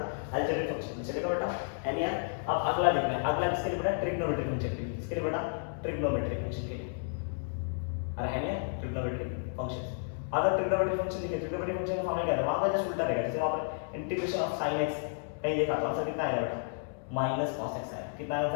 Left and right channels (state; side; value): silent; right; 56 dB below the other